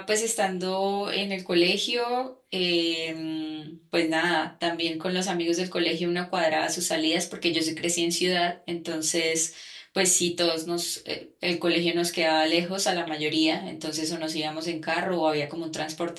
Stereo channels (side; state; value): both; identical; correlation 1.00